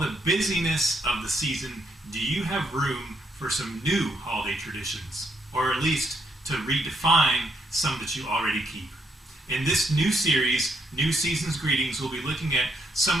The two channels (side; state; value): both; normal; correlation 0.75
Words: the busyness of the season, do you have room for some new holiday traditions? Or at least to redefine some that you already keep? In this new series, New Season's Greetings, we'll be looking at some